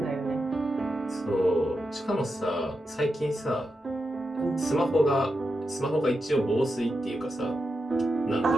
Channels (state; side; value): normal; both; correlation 0.88